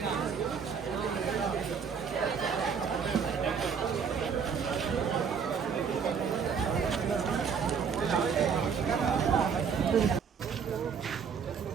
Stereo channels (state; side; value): quieter; left; 6.5 dB